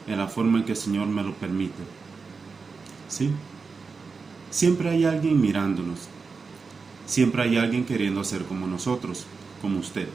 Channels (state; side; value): quieter; left; 4.8 dB